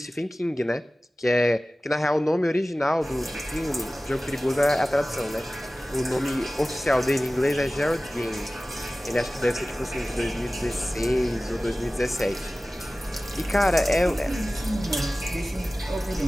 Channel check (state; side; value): normal; both; correlation 0.96